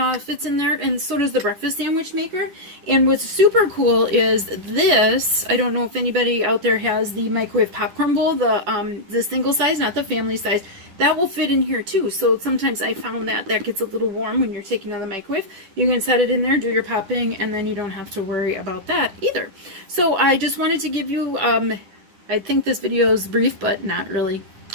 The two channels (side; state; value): left; late; 10 ms